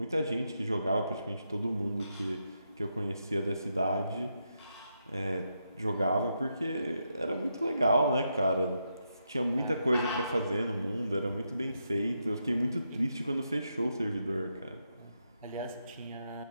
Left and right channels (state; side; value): inverted; both; correlation -0.82